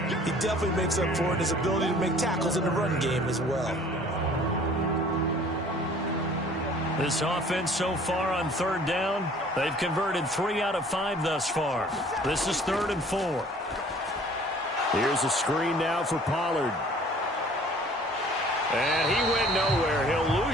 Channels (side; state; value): both; normal; correlation 0.52